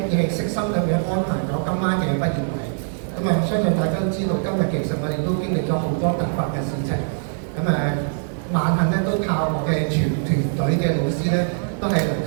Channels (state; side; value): silent; left; 64 dB below the other